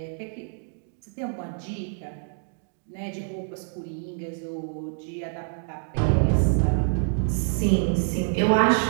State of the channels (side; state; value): left; silent; digital silence